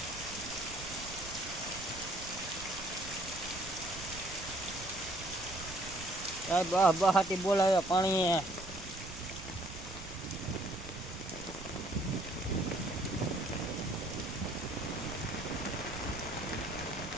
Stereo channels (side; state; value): right; noise; rumble, 12 dB below the sound